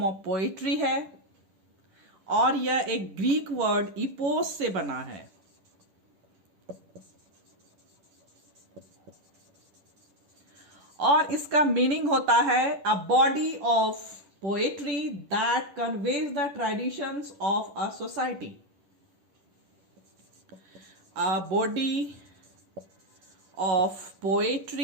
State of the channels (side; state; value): left; late; 10 ms